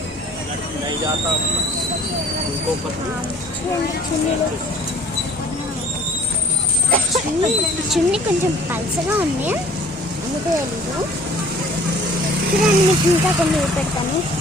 చూడండి చున్నీలు. చున్నీ కొంచెం పల్సగా ఉంది, అందుకే తెలీదు. చూడండి మీకు ఇంకా కొన్ని పెడతాను.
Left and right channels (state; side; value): normal; both; correlation 0.53